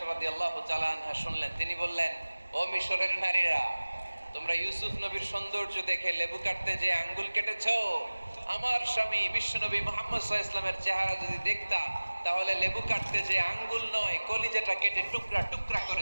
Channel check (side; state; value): both; inverted; correlation -1.00